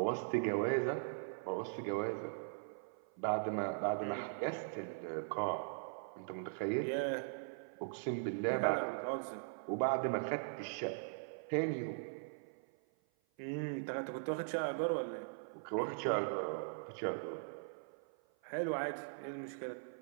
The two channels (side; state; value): left; silent; 51 dB below the other